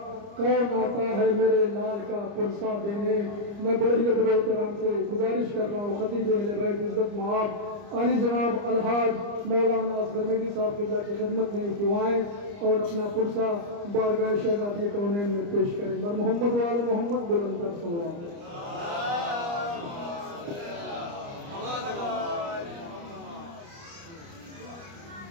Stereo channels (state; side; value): late; left; 29 ms